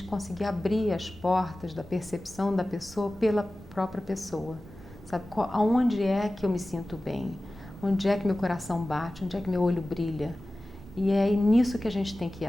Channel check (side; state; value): both; normal; correlation 0.96